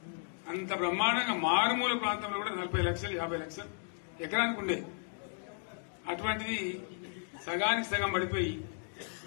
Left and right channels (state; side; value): silent; right; 55 dB below the other